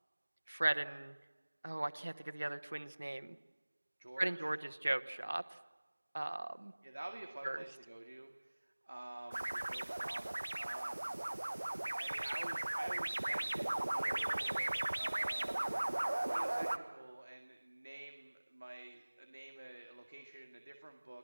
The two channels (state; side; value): inverted; both; correlation -1.00